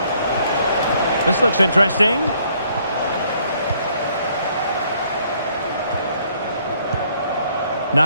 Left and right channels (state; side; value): inverted; both; correlation -0.66